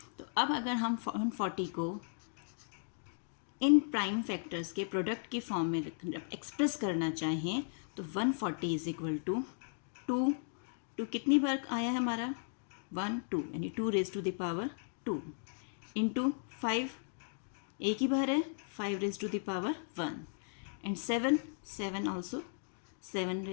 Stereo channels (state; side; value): silent; right; digital silence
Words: तो अब अगर हम 140 को इन प्राइम फैक्टर्स के प्रोडक्ट के फॉर्म में एक्सप्रेस करना चाहें तो 140 इज इक्वल टू 2 कितनी बार आया है हमारा, 1 2, यानी 2 raise to the power 2 into 5 एक ही बार है, 5 raise to the power 1 and 7 also 7